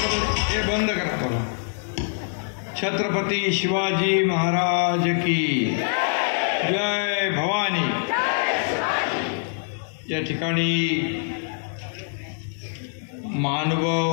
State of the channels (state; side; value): silent; right; digital silence